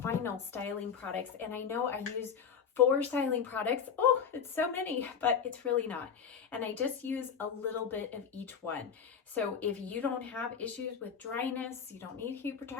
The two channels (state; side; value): quieter; right; 7.1 dB